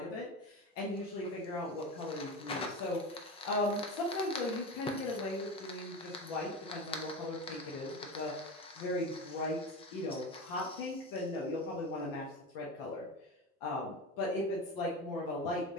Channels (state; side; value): normal; both; correlation 0.25